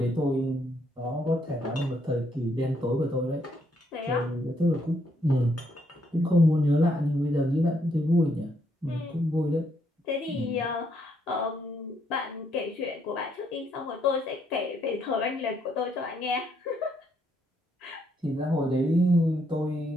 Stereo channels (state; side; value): normal; both; correlation 0.73